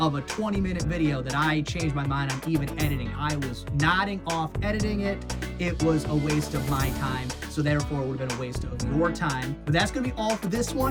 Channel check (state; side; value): identical; both; correlation 1.00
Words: a 20-minute video that I changed my mind on even editing. I was nodding off editing it. It was a waste of my time, so therefore it would have been a waste of your time. But that's going to be all for this